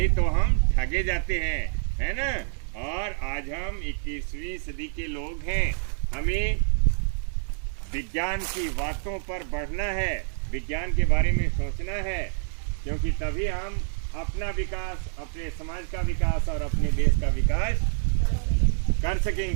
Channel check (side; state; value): left; silent; 60 dB below the other